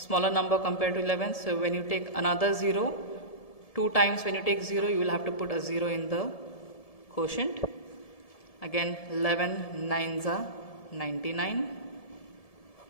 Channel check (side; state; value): right; late; 1.7 ms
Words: number compared to 11, so when you take another 0, 2 times when you take 0, you will have to put a 0 in the quotient. Again 11 9s are 99.